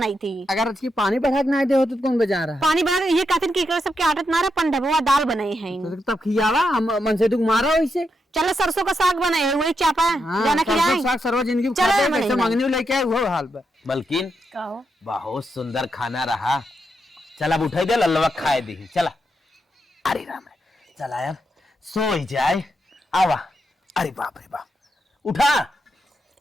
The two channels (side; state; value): both; normal; correlation 0.83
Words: थी अगर अच्छी पानी बढ़ा के ना दे होते तो कौन बजा रहा पानी बना ये कहते कि एकरा सबके आदत ना रहे पंडबवा दाल बनाई है है तब खियावा हम मन से दुख मारा वैसे चलो सरसों का साग बनाए है वही चापा जाना खिलाए साग सरवा जिंदगी चलो खाते मनीष कैसे भाई। मांगने लेके आए वो हाल पे बल्किन कहो बहुत सुंदर खाना रहा चल अब उठाई दे लल्लवा खाए दी चला अरे राम चला यार सो ही जाए आवा अरे बाप रे बाप उठा